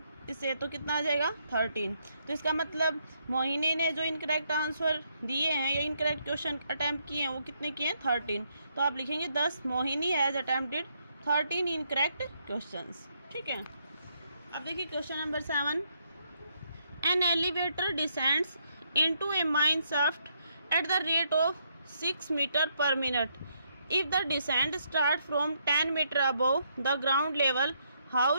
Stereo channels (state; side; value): inverted; both; correlation -0.74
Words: इससे, तो कितना आ जाएगा 13। तो इसका मतलब मोहिनी ने जो इनकरेक्ट आंसर दिए हैं या इनकरेक्ट क्वेश्चन अटैम्प्ट किए हैं वो कितने किए हैं 13। तो आप लिखेंगे 10 Mohini has attempted 13 incorrect questions. ठीक है, अब देखिए question number 7। An elevator descends into a mine shaft at the rate of 6 metre per minute. If the descent start from 10 metre above the ground level, how